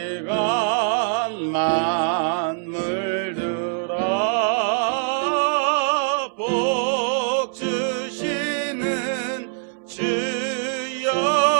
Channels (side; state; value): left; silent; digital silence